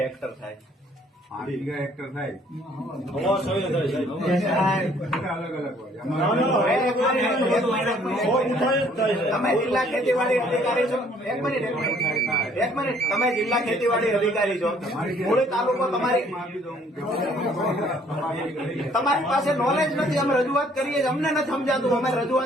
હેક્ટર થાય? 5 વીઘા હેક્ટર થાય. અલગ અલગ હોય. તમે જિલ્લા ખેતીવાડી અધિકારી છો? એક મિનિટ. તમે જિલ્લા ખેતીવાડી અધિકારી છો, મૂળી તાલુકો તમારી પાસે નોલેજ નથી. અમે રજૂઆત કરીએ, અમને નથી સમજાતું. અમે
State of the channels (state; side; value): normal; both; correlation 0.61